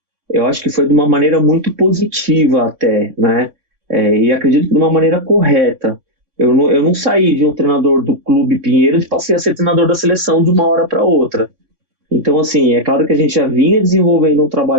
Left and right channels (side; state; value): left; late; 3.6 ms